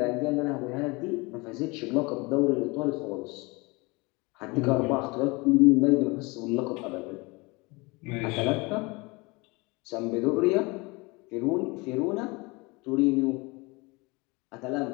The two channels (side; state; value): right; quieter; 25.8 dB